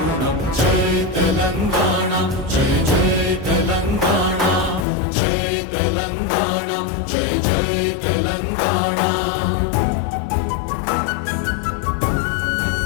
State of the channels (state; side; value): drops out; right; at 4.9 s